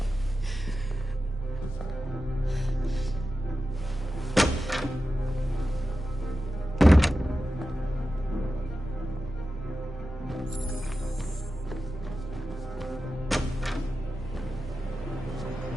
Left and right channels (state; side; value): normal; both; correlation 0.93